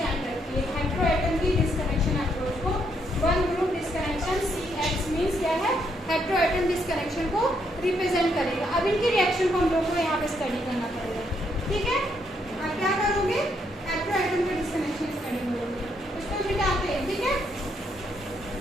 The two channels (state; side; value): normal; both; correlation 0.74